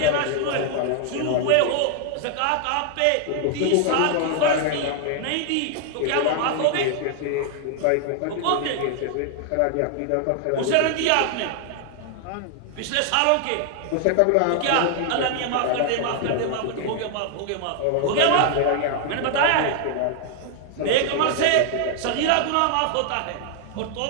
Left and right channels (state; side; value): different; both; correlation 0.00